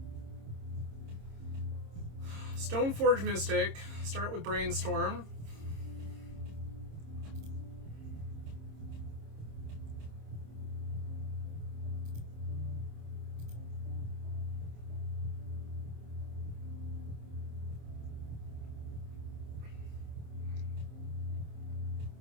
Stoneforge Mystic. Start with Brainstorm.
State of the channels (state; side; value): late; left; 26 ms